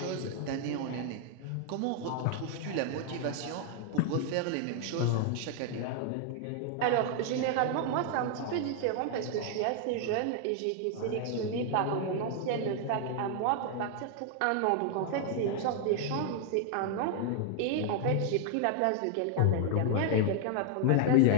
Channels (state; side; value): different; both; correlation 0.00